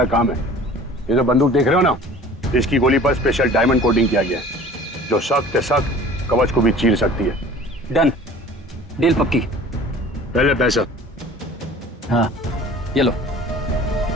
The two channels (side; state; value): both; normal; correlation 0.45